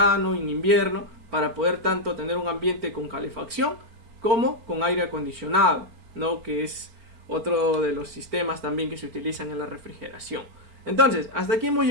en invierno, para poder tanto tener un ambiente con calefacción como con aire acondicionado, ¿no? Que es otro de los sistemas también que se utilizan en la refrigeración. Entonces, hasta aquí hemos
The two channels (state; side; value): late; left; 4.4 ms